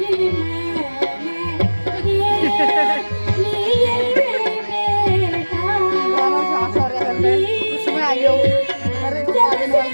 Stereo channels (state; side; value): inverted; both; correlation -1.00